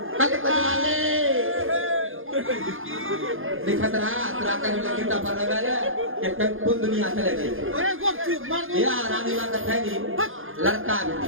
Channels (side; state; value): left; late; 0.59 ms